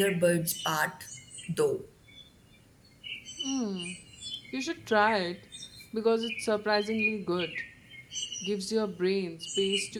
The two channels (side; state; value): both; identical; correlation 1.00